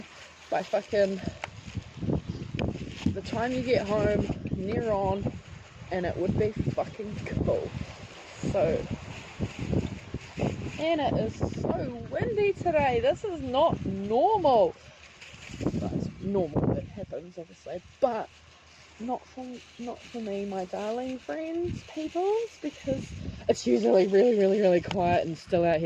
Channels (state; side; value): identical; both; correlation 1.00